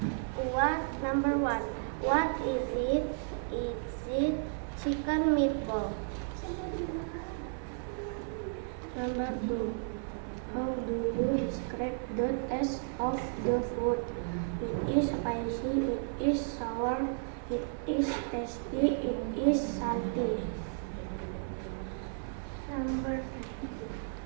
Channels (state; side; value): silent; left; 55 dB below the other